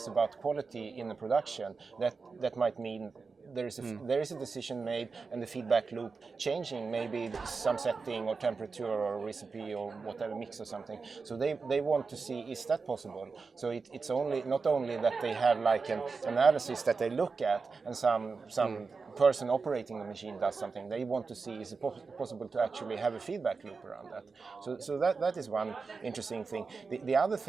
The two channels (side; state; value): left; quieter; 4.6 dB